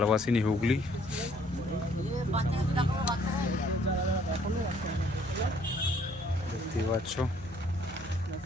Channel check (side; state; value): left; noise; hum, 19 dB below the sound